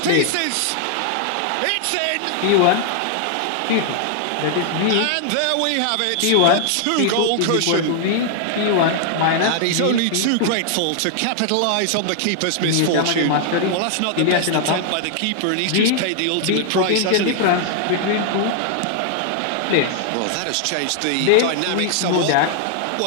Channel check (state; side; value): different; both; correlation 0.00